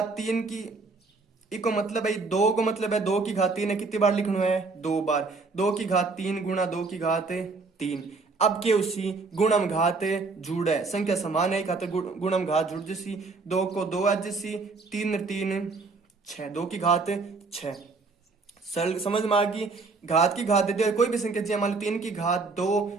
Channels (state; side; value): quieter; left; 4.0 dB